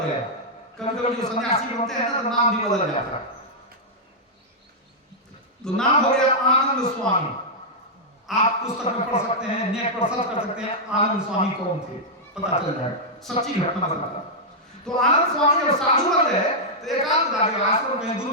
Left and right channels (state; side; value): normal; both; correlation -0.07